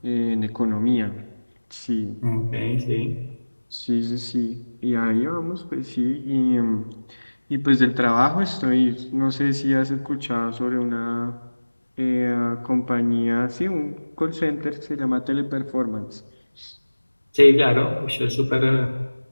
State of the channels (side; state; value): both; inverted; correlation -1.00